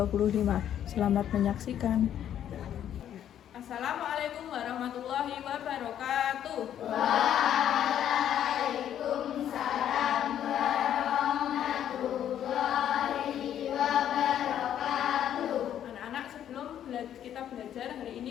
Selamat menyaksikan. Assalamualaikum warahmatullahi wabarakatuh. Waalaikumsalam warahmatullahi wabarakatuh. Anak-anak, sebelum kita belajar hari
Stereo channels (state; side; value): quieter; right; 10.3 dB